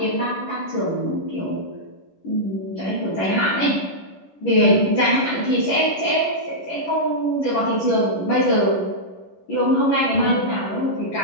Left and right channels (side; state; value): right; late; 11 ms